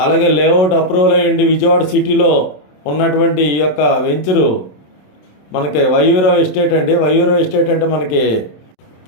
అలాగే లేఅవుట్ అప్రూవల్ అయ్యండి విజయవాడ సిటీలో ఉన్నటువంటి ఈ యొక్క వెంచరు మనకి వైవీరావు ఎస్టేట్ అండి. వైవీరావు ఎస్టేట్ అంటే మనకి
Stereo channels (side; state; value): right; late; 27 ms